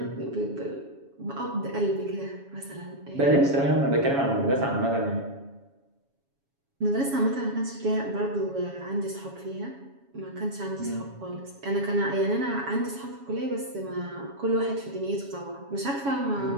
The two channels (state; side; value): late; left; 7.2 ms